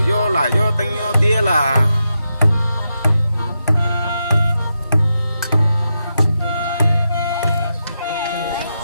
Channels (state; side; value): inverted; both; correlation -0.87